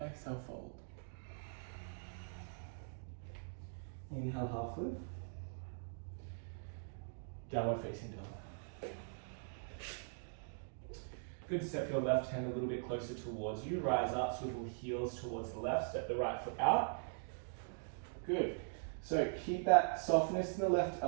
Exhale, fold. Inhale, half lift. Downward facing dog. Good, step your left hand a little bit closer towards you. Rise up, swivel heels towards the left. Step the right foot out. Good. So keep that softness in the left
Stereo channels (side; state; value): left; silent; digital silence